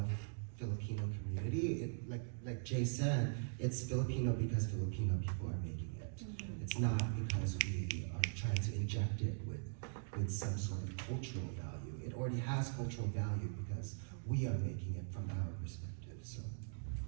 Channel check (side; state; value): left; silent; digital silence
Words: Filipino community. Like Jay said, it's Filipino because Filipino people are making it. It's not because we are trying to inject it with some sort of cultural value. It already has cultural value because we are making it from our perspective. So